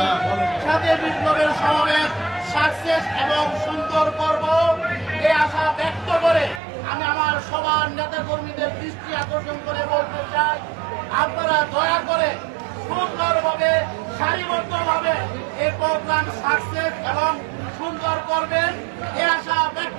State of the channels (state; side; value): drops out; left; at 6.6 s